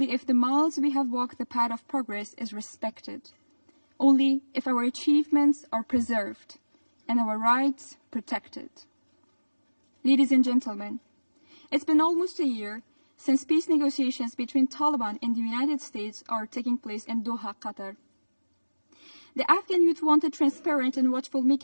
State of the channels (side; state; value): both; inverted; correlation -1.00